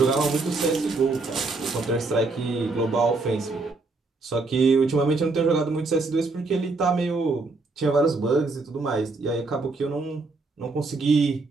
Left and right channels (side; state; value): left; quieter; 3.6 dB